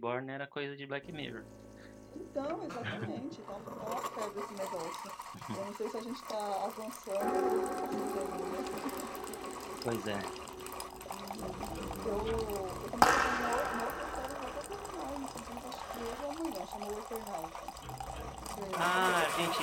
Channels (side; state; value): both; identical; correlation 1.00